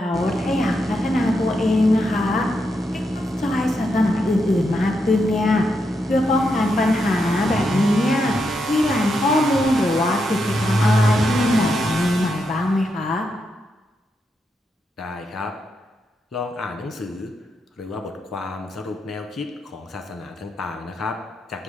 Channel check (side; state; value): both; normal; correlation 0.83